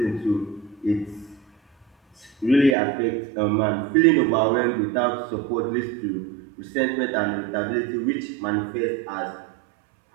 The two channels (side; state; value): left; drops out; at 2.8 s